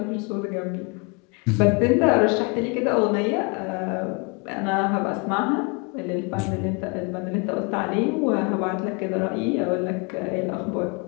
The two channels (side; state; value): right; quieter; 31.9 dB